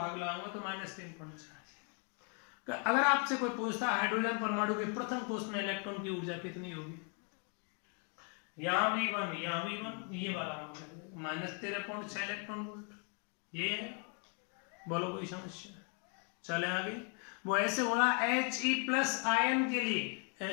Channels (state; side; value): quieter; right; 39.8 dB